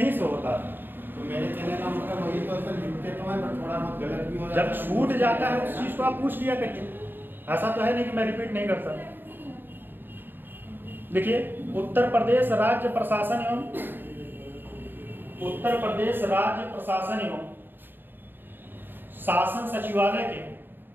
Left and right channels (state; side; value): late; left; 0.095 ms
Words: से होता है। तो मेरे कहने का मतलब वही तो सर, लिखते तो है पर थोड़ा बहुत गलत भी हो जाता है। जब छूट जाता है उस चीज को आप पूछ लिया करिए। ऐसा तो है नहीं कि मैं रिपीट नहीं करता। देखिए, उत्तर प्रदेश राज्य प्रशासन एवं, उत्तर प्रदेश राज्य प्रशासन एवं शासन सचिवालय के,